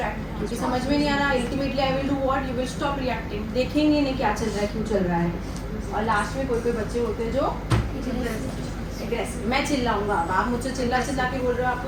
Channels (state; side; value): identical; both; correlation 1.00